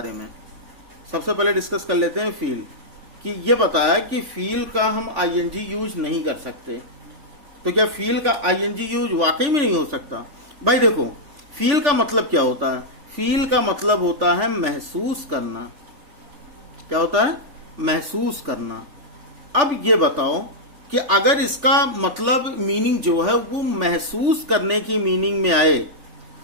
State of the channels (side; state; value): left; late; 3.4 ms